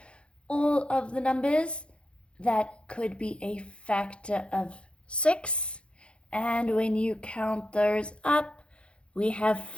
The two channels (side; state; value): right; late; 0.058 ms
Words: all of the numbers that could be a factor of 6. And when you count those up, we have